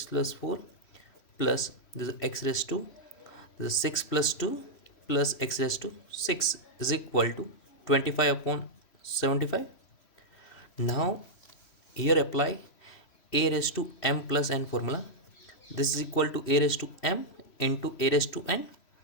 plus 4 plus this x raised to this 6 plus 2 plus x raised to 6 is equal to 25 upon 75. Now here apply a raised to m plus n formula. This is equal to a raised to m into a raised to n.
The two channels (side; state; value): right; late; 3.1 ms